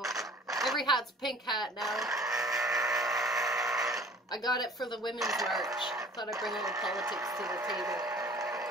Every hat's pink hat now. I got it for the Women's March. Thought I'd bring a little politics to the table.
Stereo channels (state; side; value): normal; both; correlation 0.48